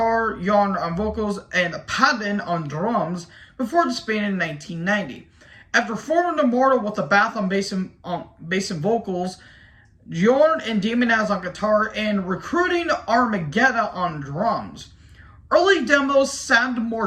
Jorn on vocals, and Padden on drums, before disbanding in 1990. After forming Immortal with Abath on bass and vocals, Jorn and Demonaz on guitar, and recruiting Armageddon on drums. Early demos sounded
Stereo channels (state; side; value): identical; both; correlation 1.00